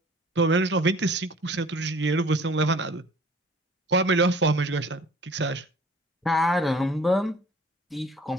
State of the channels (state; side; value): normal; both; correlation 0.50